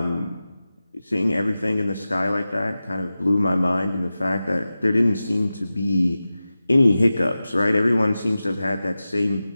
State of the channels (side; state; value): both; inverted; correlation -0.95